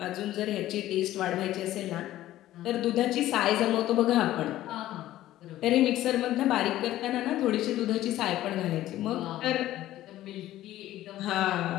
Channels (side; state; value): right; quieter; 14.3 dB